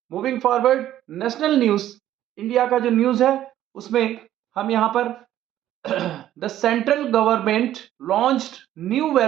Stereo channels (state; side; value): quieter; left; 12.5 dB